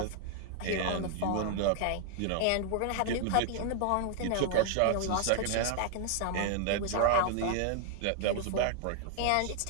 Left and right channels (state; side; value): different; both; correlation 0.00